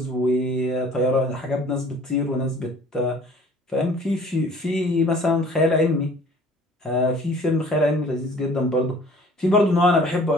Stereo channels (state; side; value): normal; both; correlation 0.51